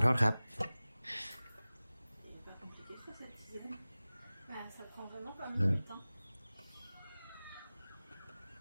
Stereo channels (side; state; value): both; inverted; correlation -0.98